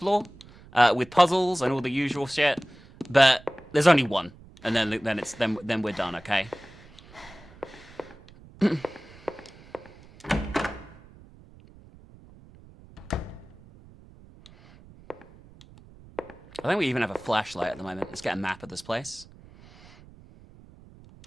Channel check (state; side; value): noise; right; rumble, 22 dB below the sound